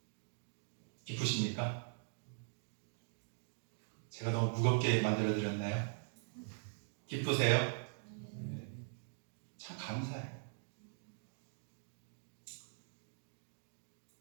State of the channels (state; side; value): silent; left; digital silence